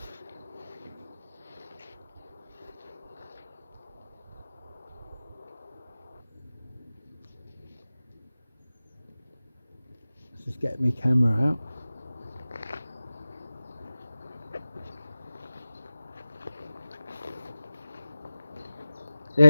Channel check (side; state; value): both; inverted; correlation -0.96